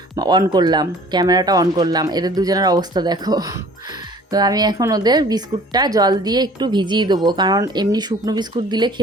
অন করলাম, ক্যামেরাটা অন করলাম। এদের দুজনের অবস্থা দেখো। তো আমি এখন ওদের বিস্কুটটা জল দিয়ে একটু ভিজিয়ে দেবো, কারণ এমনি শুকনো বিস্কুট দিলে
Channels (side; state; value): both; normal; correlation 0.50